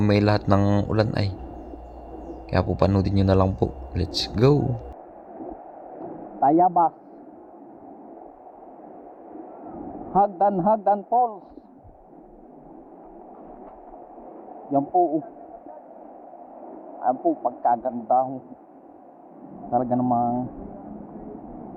lahat ng ulan ay. Kaya po panoodin nyo na lang po. Let's go! Tayabas. Hagdan Falls. Yan po. Ayan po, pagkaganda ho. Talaga namang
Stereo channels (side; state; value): both; identical; correlation 1.00